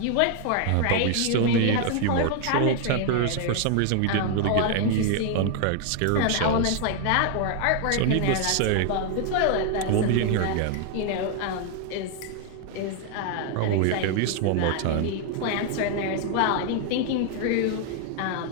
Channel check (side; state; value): both; different; correlation 0.00